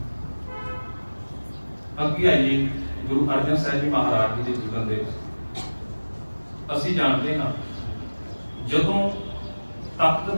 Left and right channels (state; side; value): inverted; both; correlation -1.00